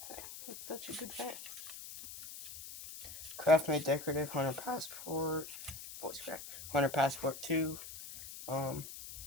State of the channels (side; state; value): left; noise; hiss, 11 dB below the sound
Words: thing. It's such a good fan. Craft Made Decorative, Hunter Passport, voice crack, Hunter Passport 2,